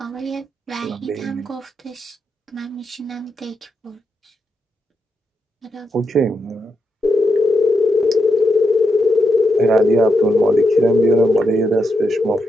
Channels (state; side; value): normal; both; correlation 0.84